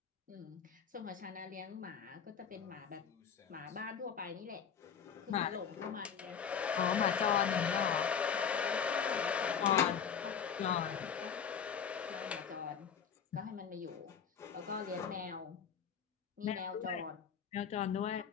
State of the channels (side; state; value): right; quieter; 7.3 dB